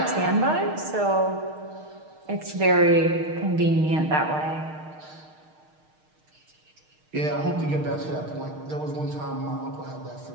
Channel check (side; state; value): left; late; 6.5 ms